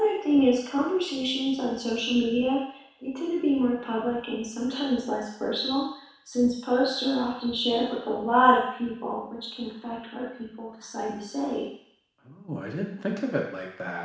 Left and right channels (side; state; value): both; identical; correlation 1.00